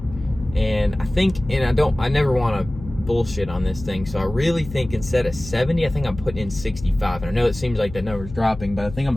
And I never want to bullshit on this thing. So I really think instead of 70, I think I'm putting in 65. And I know it seems like that number's dropping, but I think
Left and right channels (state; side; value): noise; left; hum, 13 dB below the sound